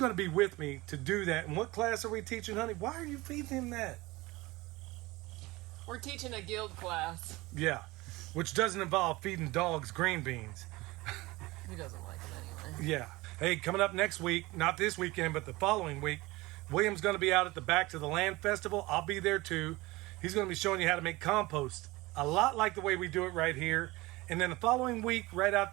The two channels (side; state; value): left; quieter; 21.1 dB